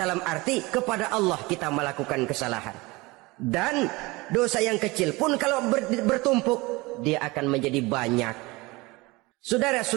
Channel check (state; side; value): quieter; left; 23.0 dB